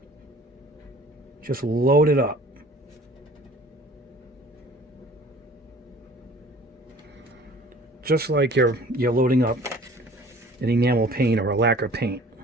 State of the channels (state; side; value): normal; both; correlation 0.49